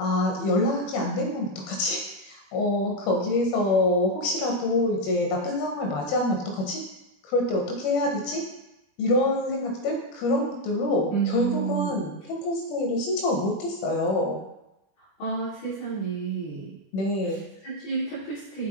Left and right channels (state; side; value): late; right; 21 ms